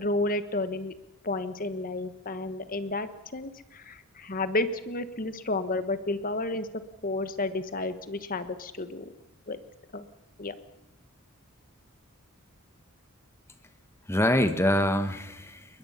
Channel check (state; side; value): normal; both; correlation 0.40